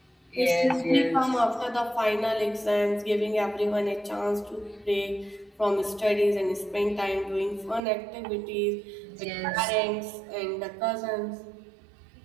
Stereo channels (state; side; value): drops out; left; at 7.8 s